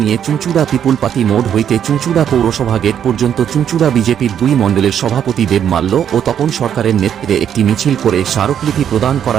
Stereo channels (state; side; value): quieter; left; 9.1 dB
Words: নিয়ে চুঁচুড়া পিপুলপাতি মোড় হইতে চুঁচুড়া পৌরসভা গেট পর্যন্ত চুঁচুড়া বিজেপির 2 মণ্ডলের সভাপতি দেব মাল্য ও তপন সরকারের নেতৃত্বে একটি মিছিল করে স্মারকলিপি প্রদান